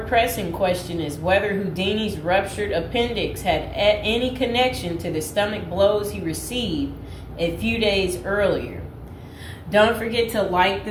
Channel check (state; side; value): identical; both; correlation 1.00